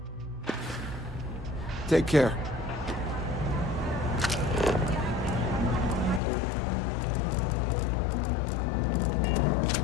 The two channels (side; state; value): right; drops out; at 6.2 s